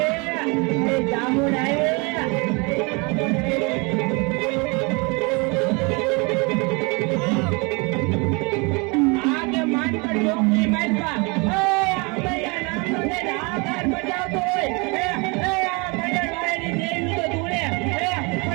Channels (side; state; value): left; quieter; 29.6 dB